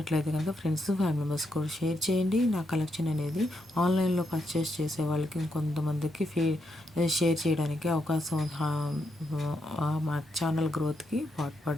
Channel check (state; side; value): normal; both; correlation 0.80